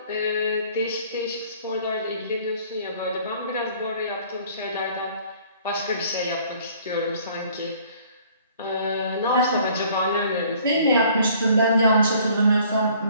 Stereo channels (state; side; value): inverted; both; correlation -0.56